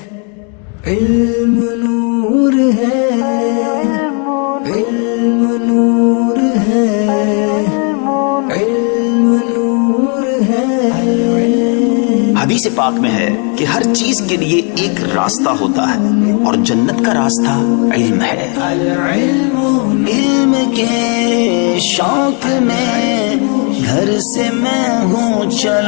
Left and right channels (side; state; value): right; quieter; 38.2 dB